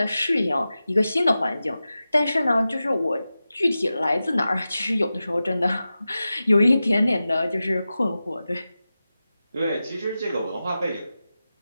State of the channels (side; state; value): both; inverted; correlation -0.94